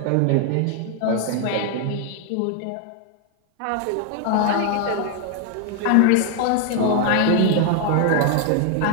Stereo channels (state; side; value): different; both; correlation 0.00